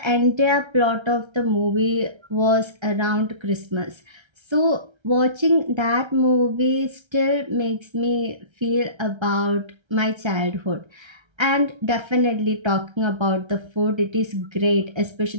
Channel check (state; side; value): late; left; 1.3 ms